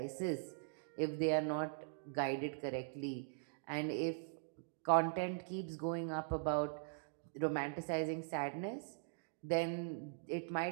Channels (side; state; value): left; silent; digital silence